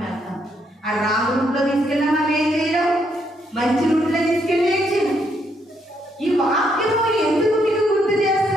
వెళ్తాం. ఆ రాంగ్ రూట్లో తీసుకెళ్ళినా మనం ఏం చేయడం, మంచి రూట్లో తీసుకెళ్ళి ఏం చేయడం. ఈ వాక్యము ఎందుకు మీకు గుర్తు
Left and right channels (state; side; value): normal; both; correlation 0.74